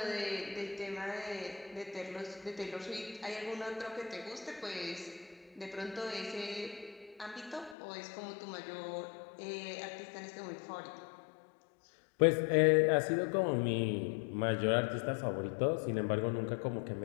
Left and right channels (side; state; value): right; drops out; at 7.8 s